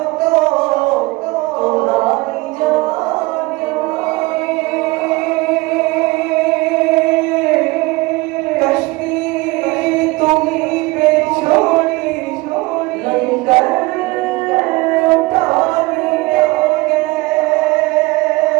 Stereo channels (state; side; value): quieter; left; 22.7 dB